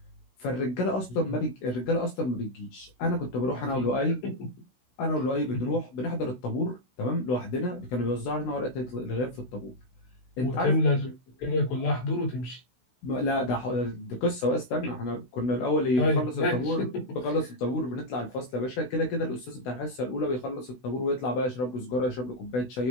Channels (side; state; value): right; late; 16 ms